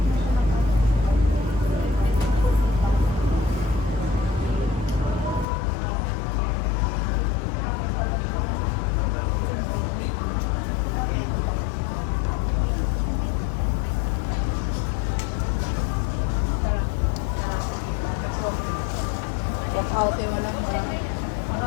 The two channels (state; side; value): drops out; right; at 5.5 s